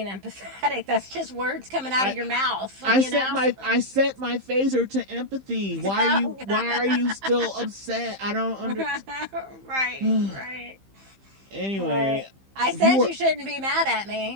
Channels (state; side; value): late; left; 15 ms